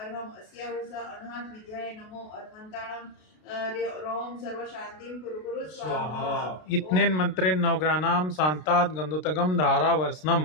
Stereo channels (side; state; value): right; late; 33 ms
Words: अस्या उषा अनाहत विद्याय नमो अरिहन्ताणां रोम सर्व शांतिं कुरु कुरु स्वाहा इत्नेन मंत्रेण नवग्रहाणां शान्तात् गन्धोतकं